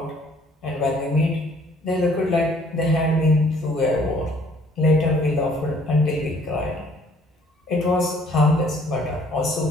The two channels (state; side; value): normal; both; correlation 0.60